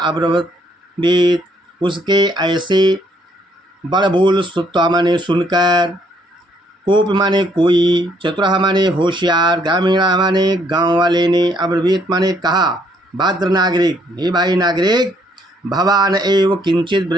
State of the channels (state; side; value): normal; both; correlation 0.68